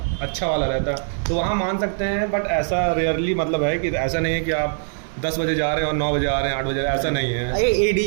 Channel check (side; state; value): left; silent; 64 dB below the other